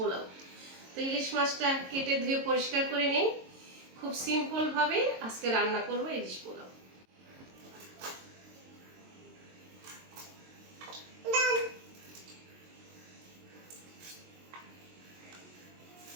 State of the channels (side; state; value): left; late; 22 ms